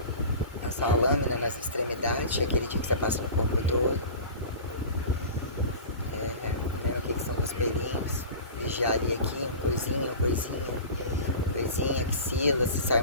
Passar a lâmina nas extremidades, aquele dia que você passa no corpo todo. Vendo o que são os pelinhos. Vigiar ali aqui, coisinha, axila, se sai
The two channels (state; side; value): inverted; both; correlation -0.35